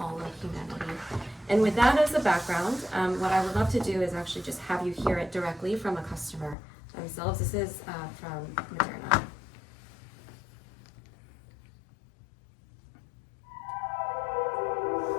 of humanity. And with that as a background, what I would love to do is actually just have you hear it directly from a customer themselves. This is from Moderna.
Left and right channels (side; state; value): right; drops out; at 6.6 s